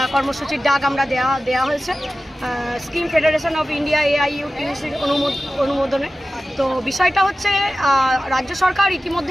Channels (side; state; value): both; normal; correlation 0.94